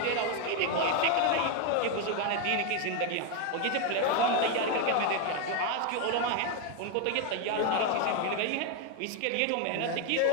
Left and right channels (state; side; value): different; both; correlation 0.01